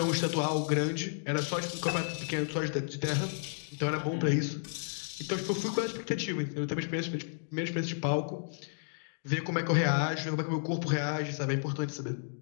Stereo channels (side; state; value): right; silent; digital silence